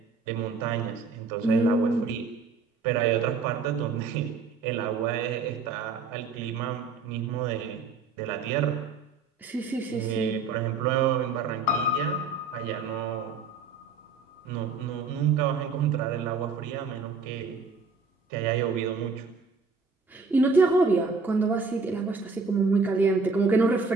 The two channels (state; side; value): quieter; left; 4.6 dB